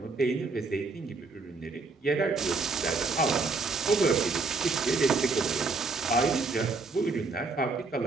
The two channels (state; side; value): quieter; left; 3.9 dB